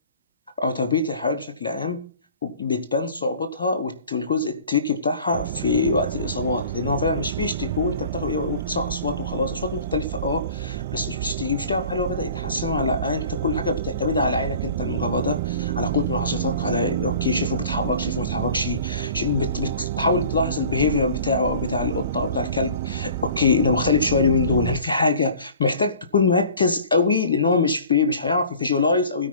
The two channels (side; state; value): both; inverted; correlation -0.45